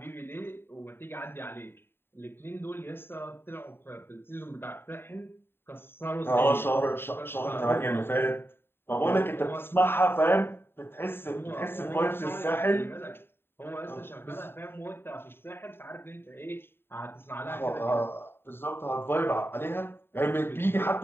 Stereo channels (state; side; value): late; right; 0.11 ms